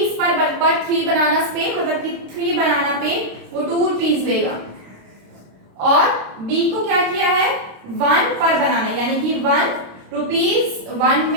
पर 3 बनानास पे मतलब कि 3 बनाना पे वो 2 रुपीज लेगा और बी को क्या किया है 1 पर बनाना यानी कि 1 रुपीज 1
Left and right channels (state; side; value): late; left; 26 ms